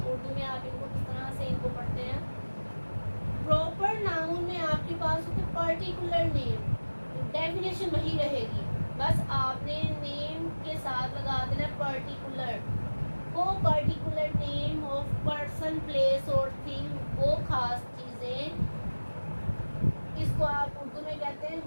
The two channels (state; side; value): inverted; both; correlation -1.00